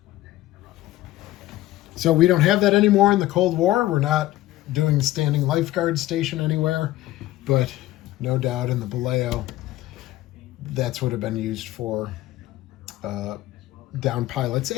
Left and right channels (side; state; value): right; quieter; 15.8 dB